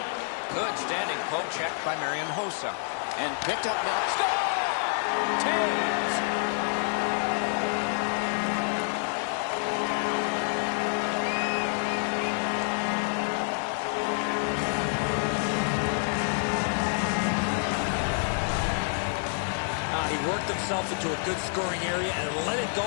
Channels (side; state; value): right; silent; 59 dB below the other